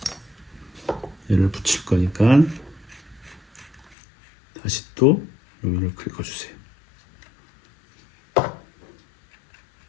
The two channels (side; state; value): right; drops out; at 4.0 s